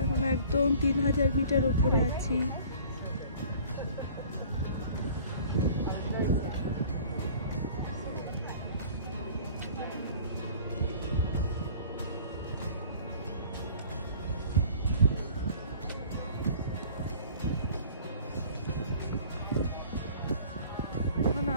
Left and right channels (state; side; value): inverted; both; correlation -0.48